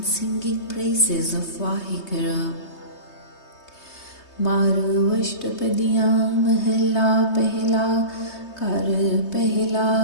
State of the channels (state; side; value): late; right; 3.2 ms